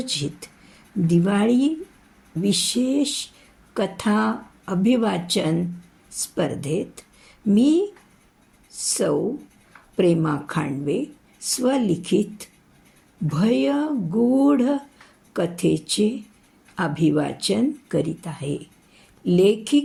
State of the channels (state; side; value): identical; both; correlation 1.00